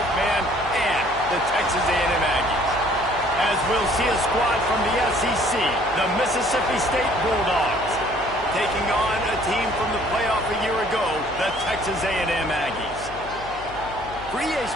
man and the Texas A&M Aggies. As we'll see a squad from the SEC, the Mississippi State Bulldogs, taking on a team from the playoff a year ago, the Texas A&M Aggies. For EA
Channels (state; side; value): noise; left; hum, 17 dB below the sound